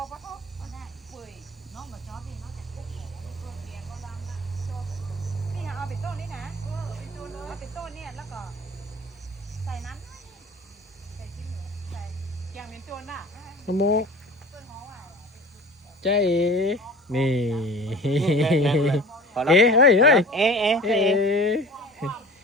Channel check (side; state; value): both; normal; correlation 0.41